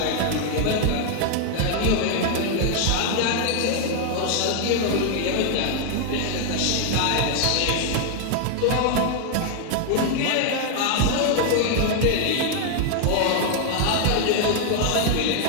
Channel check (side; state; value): both; different; correlation 0.00